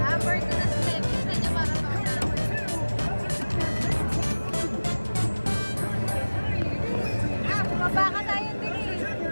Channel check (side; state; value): both; inverted; correlation -1.00